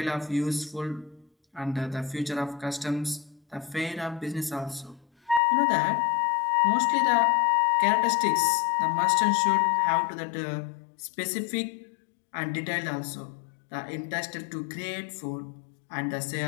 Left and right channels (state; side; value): drops out; right; at 5.4 s